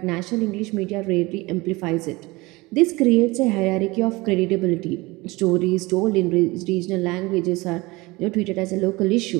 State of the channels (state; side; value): quieter; left; 22.7 dB